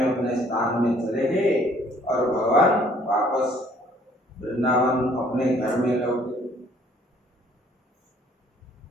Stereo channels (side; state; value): both; normal; correlation 0.60